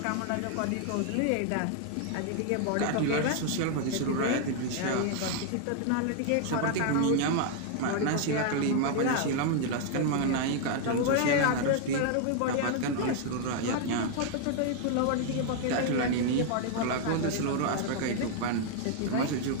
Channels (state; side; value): different; both; correlation 0.00